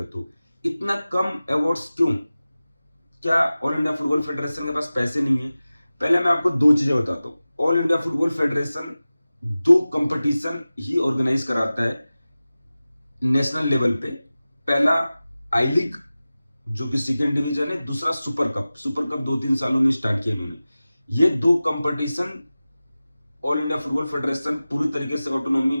तो इतना कम अवार्ड्स क्यों? क्या ऑल इंडिया फुटबॉल फेडरेशन के पास पैसे नहीं है? पहले मैं आपको दो चीजें बताता हूं। ऑल इंडिया फुटबॉल फेडरेशन दो कंपटीशन ही ऑर्गेनाइज कराता है नेशनल लेवल पे। पहला आई लीग जो कि सेकेंड डिवीजन है, दूसरा सुपर कप। सुपर कप 2-3 सालों में स्टार्ट किया इन्होंने। ये दो competition all India football federation पूरी तरीके से ऑटोनॉमी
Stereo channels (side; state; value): both; inverted; correlation -0.97